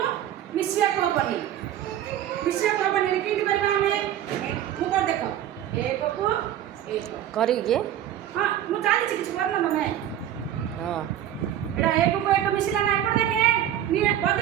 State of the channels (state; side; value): quieter; left; 11.3 dB